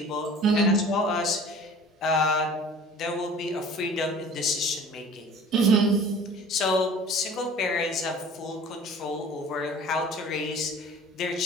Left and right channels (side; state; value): both; normal; correlation 0.45